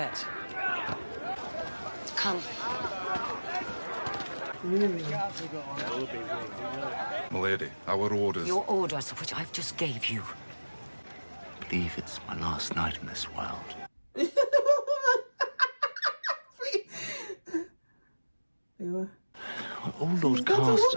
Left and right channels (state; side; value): inverted; both; correlation -1.00